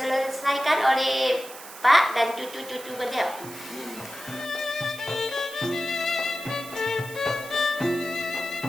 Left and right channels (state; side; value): noise; right; hiss, 15 dB below the sound